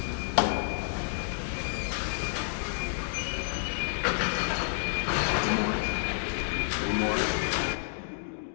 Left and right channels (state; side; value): silent; right; digital silence